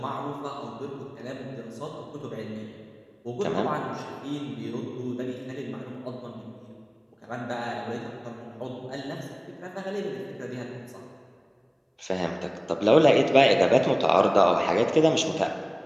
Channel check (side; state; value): both; identical; correlation 1.00